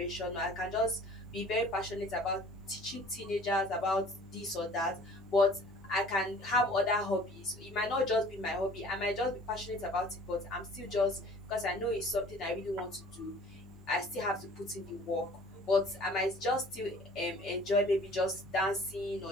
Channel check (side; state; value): both; normal; correlation 0.49